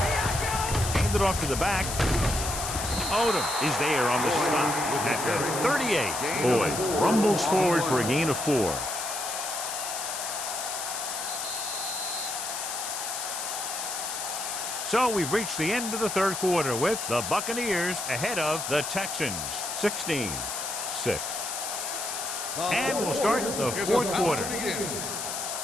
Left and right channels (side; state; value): left; noise; hiss, 4 dB below the sound